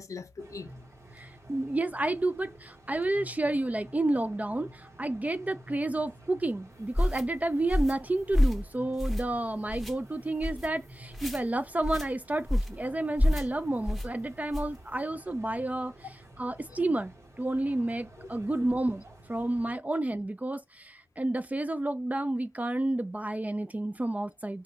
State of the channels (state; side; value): normal; both; correlation 0.95